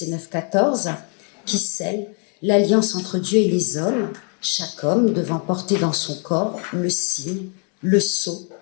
9-14, qui scelle l'alliance entre Dieu et les hommes, chaque homme devant porter dans son corps le signe, le sceau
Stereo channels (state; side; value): quieter; right; 39.8 dB